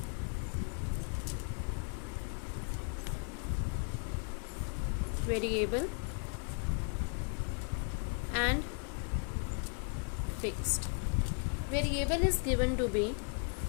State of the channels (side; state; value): right; quieter; 39.5 dB